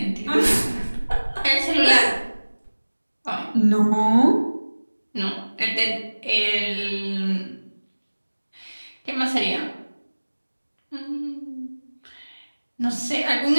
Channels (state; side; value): inverted; both; correlation -1.00